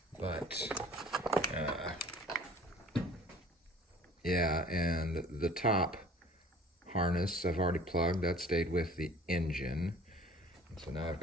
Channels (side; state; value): both; normal; correlation 0.49